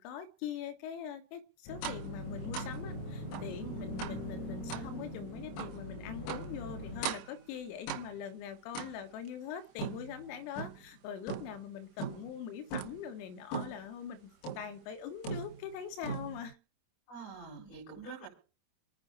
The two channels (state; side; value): late; right; 25 ms